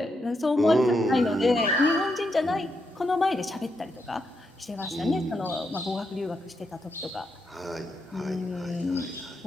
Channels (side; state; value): both; normal; correlation 0.82